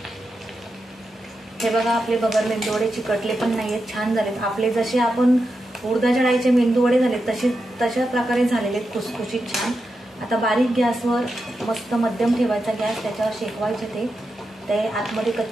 हे बघा आपले बगर मेंदू वडे चिकटले पण नाही आहेत, छान झालेत आपले. जसे आपण उडदाच्या डाळीचे मेंदू वडे झाले तशा प्रकारे झालेले आहेत, खुसखुशीत छान. आता बारीक गॅसवर मस्त मध्यम ठेवायचा गॅस, त्याच्यावर शेकवायचे ते आतमध्ये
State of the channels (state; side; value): normal; both; correlation 0.88